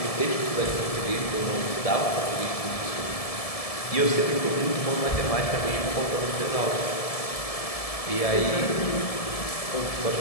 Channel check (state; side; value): late; right; 1.7 ms